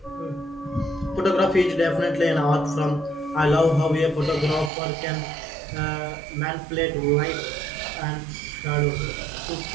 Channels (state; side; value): drops out; left; at 4.7 s